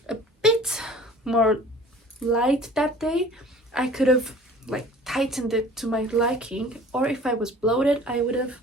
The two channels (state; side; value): normal; both; correlation 0.47